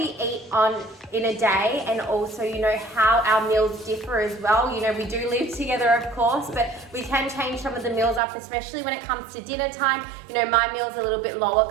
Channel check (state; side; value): drops out; left; at 8.2 s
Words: eat in a day, and also, how our meals differ as well. We do live together, of course, but we can change some of the meals up, especially when it comes to dinner time. My meal's a little bit lower